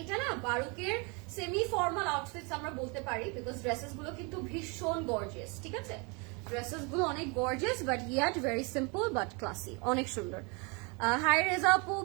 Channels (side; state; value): left; quieter; 31.1 dB